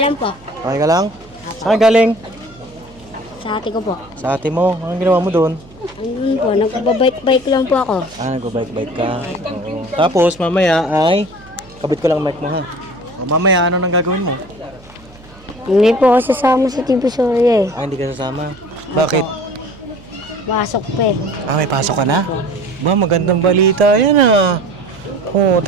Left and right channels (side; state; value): right; noise; hum, 23 dB below the sound